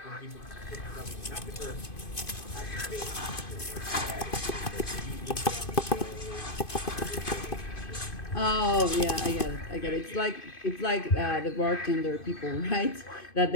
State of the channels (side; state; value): right; late; 2.5 ms